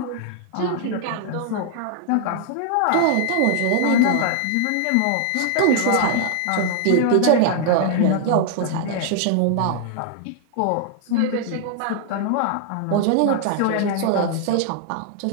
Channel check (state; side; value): different; both; correlation 0.00